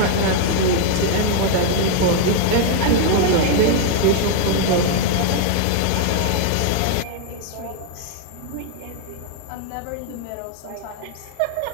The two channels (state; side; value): different; both; correlation 0.00